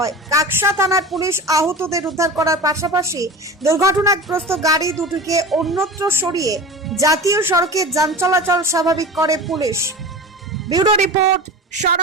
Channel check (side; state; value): both; normal; correlation 0.32